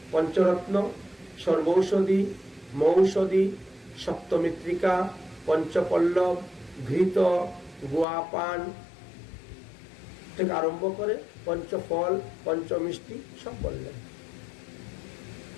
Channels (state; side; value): drops out; right; at 8.1 s